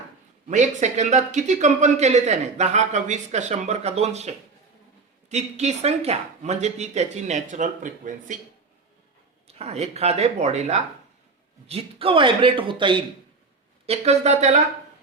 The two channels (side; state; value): left; quieter; 4.1 dB